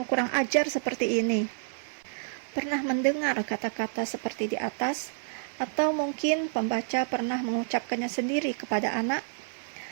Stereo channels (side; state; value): left; silent; 59 dB below the other